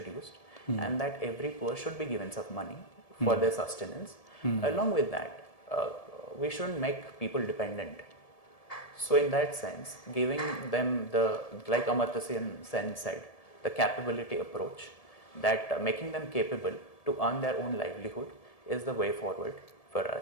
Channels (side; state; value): right; late; 1.7 ms